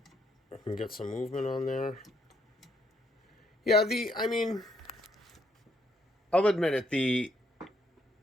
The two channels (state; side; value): normal; both; correlation 0.72